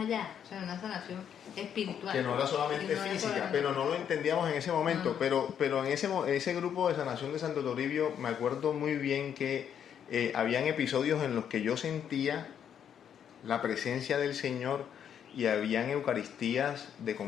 o sea, una sanación espiritual. Que no era solamente física, pero no lo entendíamos en ese momento. Pero en ese grupo de sanación de Santo Toribio, me acuerdo muy bien que habían episodios en los que yo sentía la presencia del Señor y habían eucaristías de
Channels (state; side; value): quieter; right; 8.7 dB